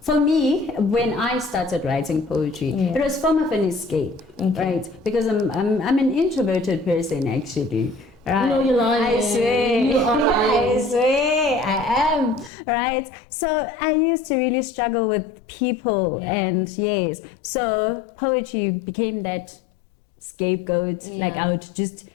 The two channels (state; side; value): drops out; right; at 12.5 s